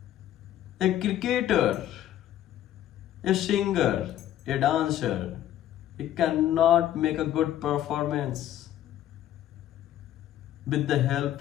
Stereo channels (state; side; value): quieter; right; 12.1 dB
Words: a cricketer, a singer, a dancer, he cannot make a good performance with the